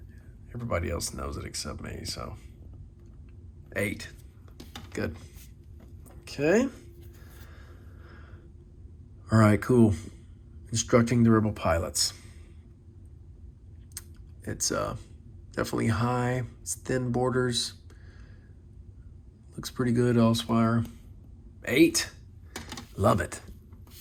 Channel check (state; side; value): identical; both; correlation 1.00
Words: everybody else knows it except me. So 8. Good. Okay. All right, cool. Instructing the Rebel pilots. It's definitely high. It's thin borders. Looks pretty good, Elsewhere. 8. Love it.